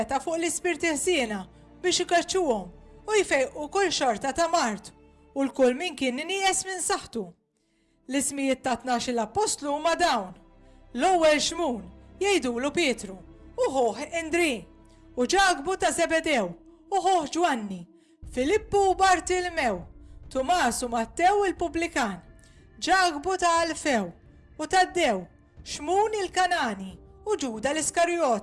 fuq l-ispirti ħsiena biex ikaċċuhom u jfejqu kull xorta ta' mart u l-kull min kien nieqes minn saħħtu. L-ismijiet ta' 12 l-apostlu huma dawn: l-ewwel Xmun jgħidulu Pietru, u ħoħ Indri, u Ġagbu ta' Zebedew, u ħoħ Ġwanni, Filippu u Bartilmew, Tumas u Mattew il-Pubblikan, Ġagbu ta' Alfew u Taddew, Xmun il-Kanani u Ġuda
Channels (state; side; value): identical; both; correlation 1.00